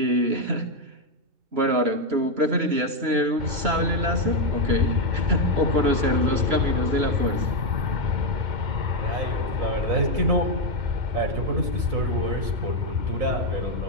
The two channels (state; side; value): late; left; 2.9 ms